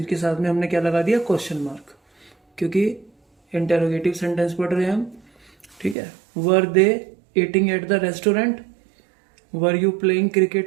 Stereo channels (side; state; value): left; drops out; at 6.0 s